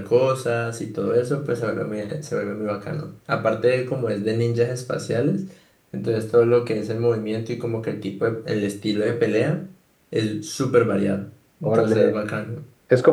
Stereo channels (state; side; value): identical; both; correlation 1.00